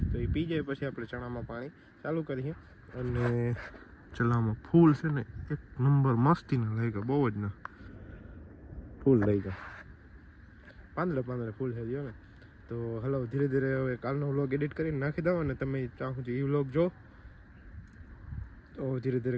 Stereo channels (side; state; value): both; identical; correlation 1.00